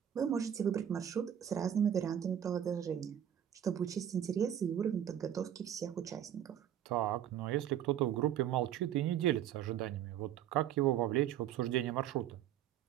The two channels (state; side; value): quieter; left; 10.2 dB